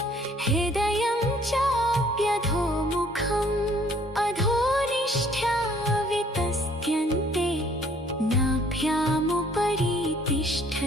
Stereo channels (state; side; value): normal; both; correlation 0.60